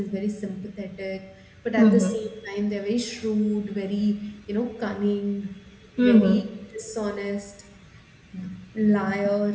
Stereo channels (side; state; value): both; identical; correlation 1.00